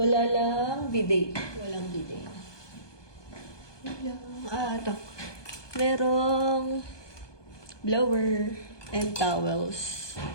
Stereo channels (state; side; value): late; right; 1.2 ms